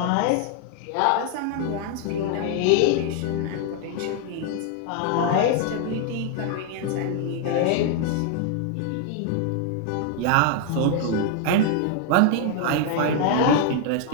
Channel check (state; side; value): different; both; correlation 0.00